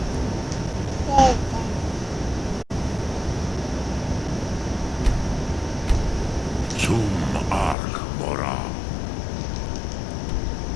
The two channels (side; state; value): right; drops out; at 7.8 s